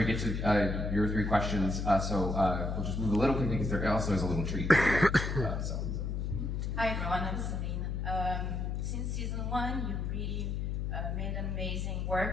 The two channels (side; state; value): left; noise; hum, 2 dB below the sound